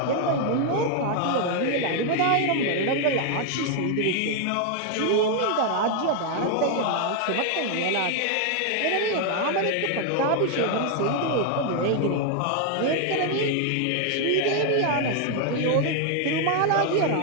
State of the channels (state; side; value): different; both; correlation 0.00